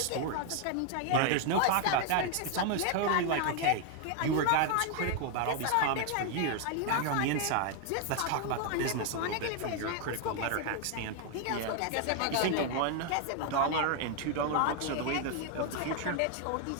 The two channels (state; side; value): different; both; correlation 0.01